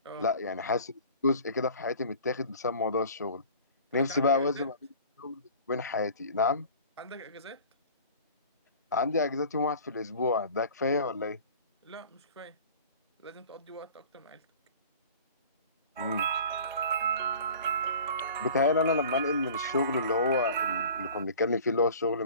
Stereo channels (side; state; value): both; inverted; correlation -0.44